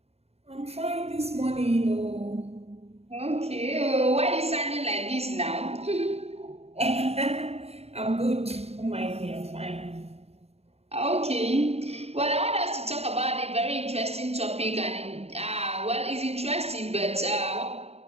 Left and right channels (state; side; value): late; left; 0.30 ms